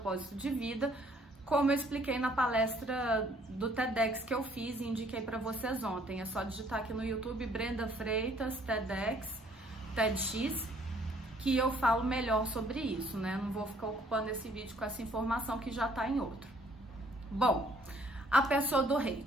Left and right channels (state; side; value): normal; both; correlation 0.62